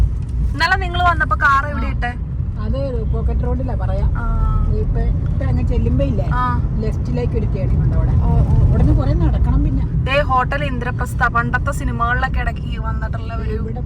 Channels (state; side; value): identical; both; correlation 1.00